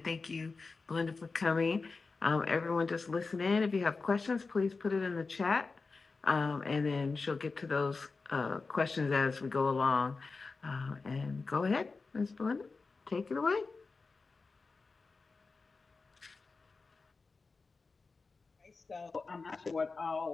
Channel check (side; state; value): right; quieter; 4.1 dB